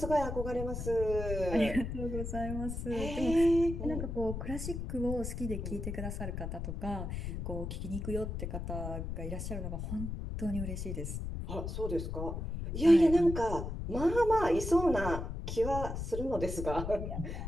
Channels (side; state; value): left; noise; rumble, 5 dB below the sound